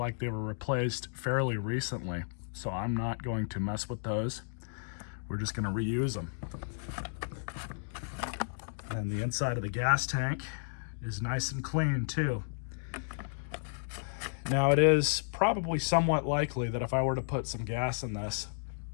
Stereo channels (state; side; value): silent; right; digital silence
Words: they were replaced fairly recently. So I'm not going to mess with those. We're just going to reuse them. And the inside of the gas tank is nice and clean too. Now it is probably somewhat likely that if I were to put some gas in this